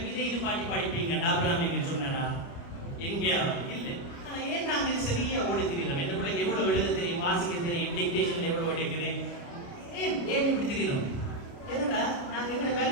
இதை இது பாட்டி படிப்பீங்க டாக்டர் அப்படின்னு சொன்னா எங்கேயாவது இல்லை. ஆனா ஏன் நாங்க இது சரியா ஓடி தெரியணும்? எந்த பிள்ளைக்கு எவ்வளவு எழுத தெரியும், வாசிக்க தெரியும், டிக்டேஷன் எவ்வளவு எடுக்குது, ஏன் இப்படி தெரியணும்? என்னடா நாங்க எங்களோட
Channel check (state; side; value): late; right; 29 ms